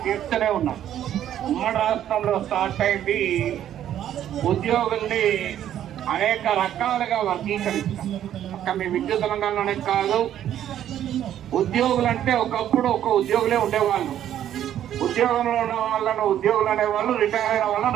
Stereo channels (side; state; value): left; quieter; 11.0 dB